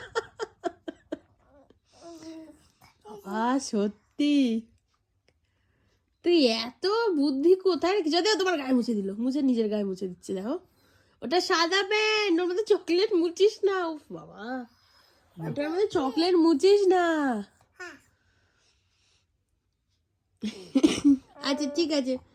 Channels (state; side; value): identical; both; correlation 1.00